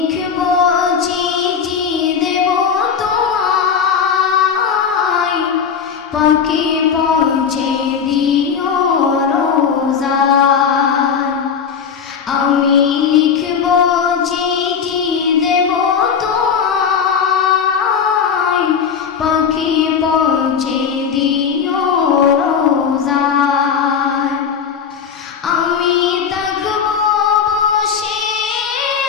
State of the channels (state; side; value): quieter; right; 6.8 dB